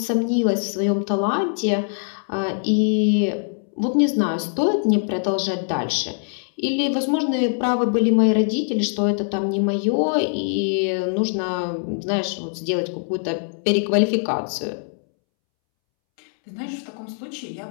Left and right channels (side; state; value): right; silent; 64 dB below the other